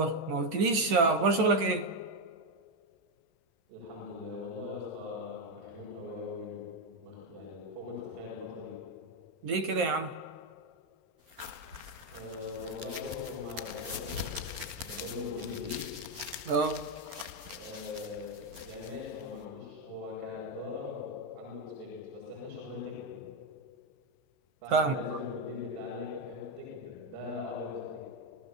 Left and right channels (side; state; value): left; late; 11 ms